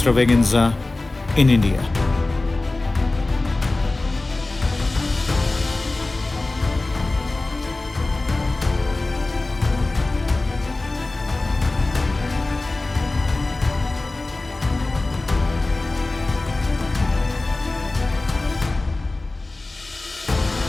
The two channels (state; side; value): quieter; right; 3.1 dB